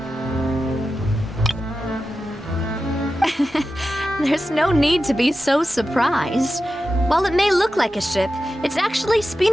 There's no need to be so surprised. While it may look like a ship, it's actually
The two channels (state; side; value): normal; both; correlation 0.92